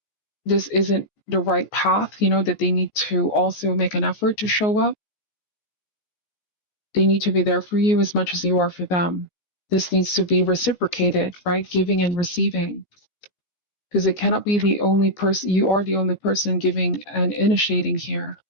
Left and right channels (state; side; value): late; right; 14 ms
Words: this isn't the right path, that they need to also make an effort to show up. They need to be there for you as much as you are for them. This needs to be reciprocated, right? Giving and receiving. Because it cannot be the only person, you are the only person giving and initiating here.